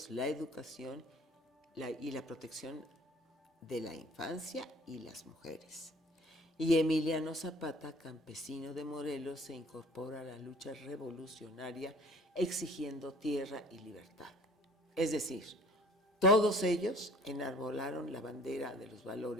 la educación y la protección de la infancia y las mujeres. Y Emiliano Zapata, campesino de Morelos, se incorpora a la lucha revolucionaria exigiendo tierra y libertad. Es decir, todos ellos enarbolaron la bandera de los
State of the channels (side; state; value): both; normal; correlation 0.50